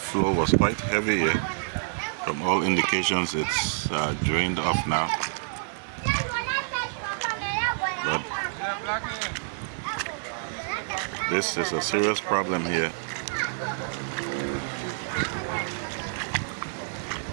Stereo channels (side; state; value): left; silent; digital silence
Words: was quite heavy here. From all indications, it's drained off now. But this is a serious problem here.